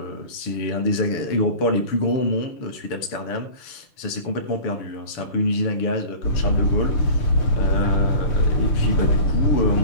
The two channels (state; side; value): late; right; 6.9 ms